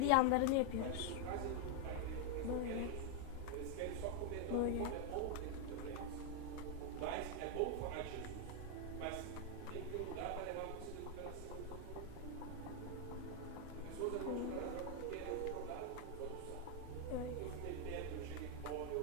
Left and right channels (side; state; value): both; different; correlation 0.00